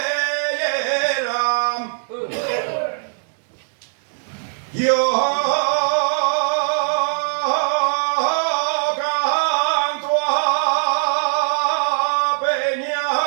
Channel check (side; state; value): left; silent; digital silence